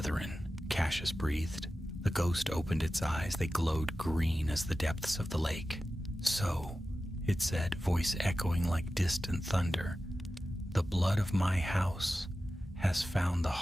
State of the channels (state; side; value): normal; both; correlation 0.94